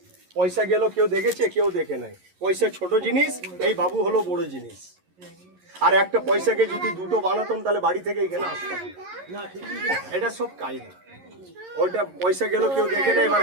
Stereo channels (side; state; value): left; late; 11 ms